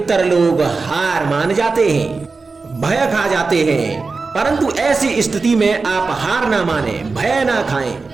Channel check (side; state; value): left; quieter; 4.1 dB